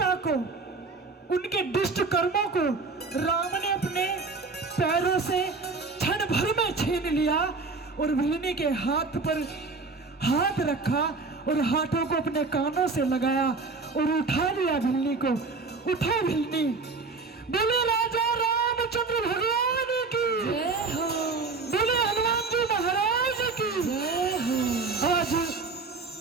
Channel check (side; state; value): left; quieter; 4.1 dB